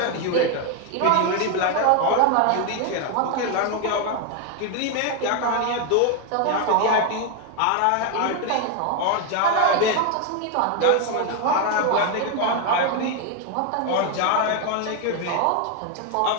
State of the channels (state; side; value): different; both; correlation 0.01